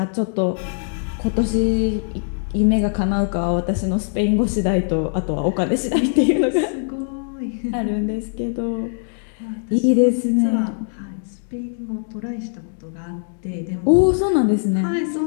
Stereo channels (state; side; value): silent; right; digital silence